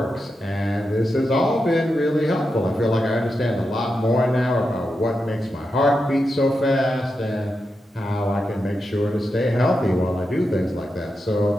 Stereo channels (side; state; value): both; normal; correlation 0.88